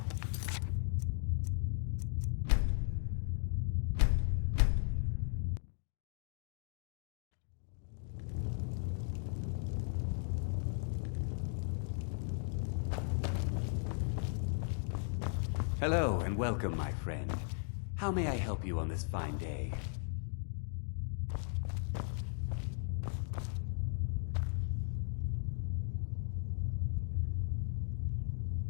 Hello and welcome, my friend. How may I help you on this fine day?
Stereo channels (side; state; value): right; silent; digital silence